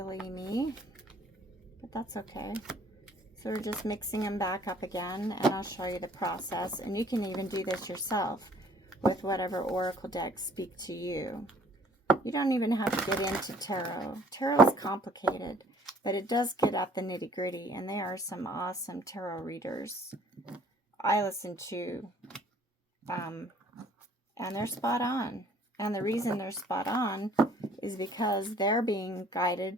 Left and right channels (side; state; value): both; normal; correlation 0.56